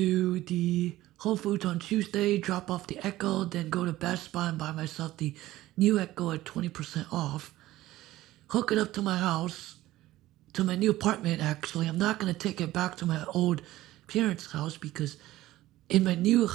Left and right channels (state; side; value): quieter; left; 16.0 dB